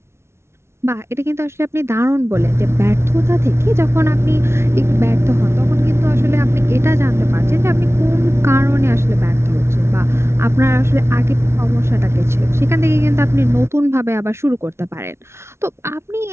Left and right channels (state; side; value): late; left; 0.13 ms